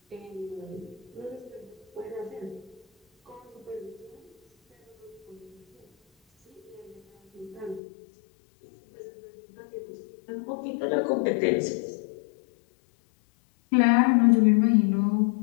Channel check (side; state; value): right; drops out; at 7.8 s